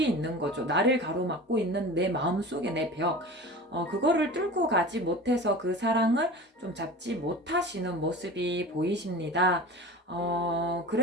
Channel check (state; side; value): normal; both; correlation 0.35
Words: 있는 거죠. 나를 가로막고 있는 내 마음 속의 내 벽. 그거를 뚫고 가지 못해서 그 사랑을 좀 잡지 못하시는 모습이 보이십니다.